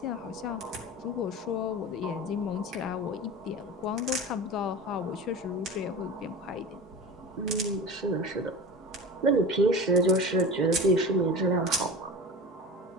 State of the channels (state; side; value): normal; both; correlation 0.31